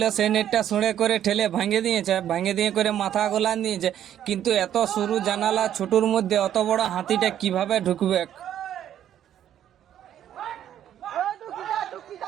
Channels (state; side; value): quieter; left; 10.7 dB